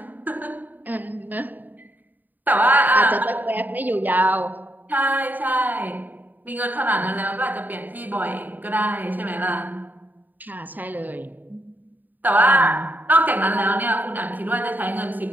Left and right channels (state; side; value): late; left; 0.086 ms